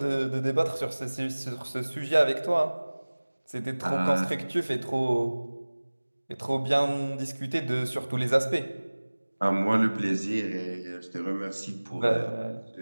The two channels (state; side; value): inverted; both; correlation -1.00